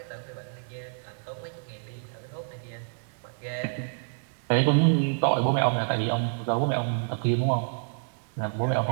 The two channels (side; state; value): left; silent; digital silence